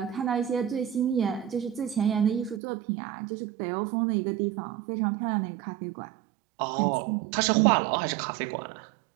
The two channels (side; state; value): left; drops out; at 2.6 s